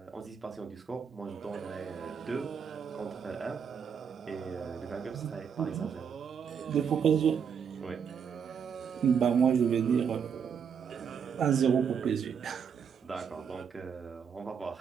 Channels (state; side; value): quieter; left; 7.1 dB